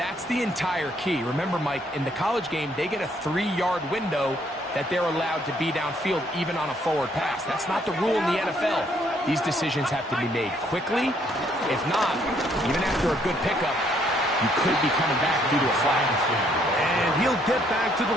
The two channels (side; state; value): both; normal; correlation 0.68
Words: the entire key. Remember, Mike, in the college game, they get a 3-yard window that they're allowed to be downfield even on a forward pass. That's not the rule in the NFL. These decisions have to be made quickly. If not, even after a good pickup, you could be coming back due to a flag. And he'll get back to the